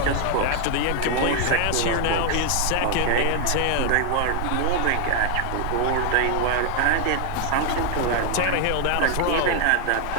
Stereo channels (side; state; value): both; different; correlation 0.01